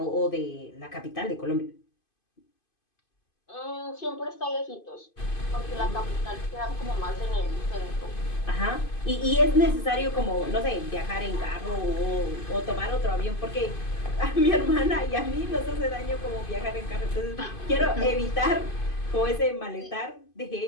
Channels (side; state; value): right; late; 2.5 ms